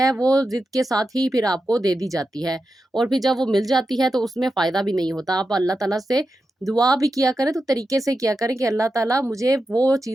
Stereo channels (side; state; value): both; normal; correlation 0.90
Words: وہ ضد کے ساتھ ہی پھر آپ کو دے دی جاتی ہے، اور پھر جب وہ مل جاتی ہے تو اس میں فائدہ بھی نہیں ہوتا۔ آپ اللہ تعالیٰ سے دعا بھی کیا کریں تو طریقے سے کیا کریں کہ اللہ تعالیٰ مجھے وہ